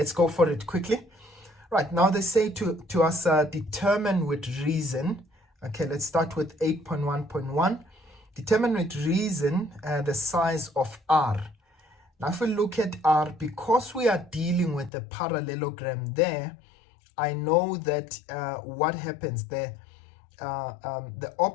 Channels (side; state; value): right; drops out; at 14.9 s